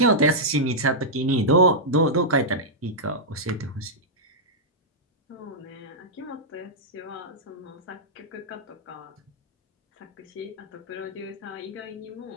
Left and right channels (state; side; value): normal; both; correlation -0.09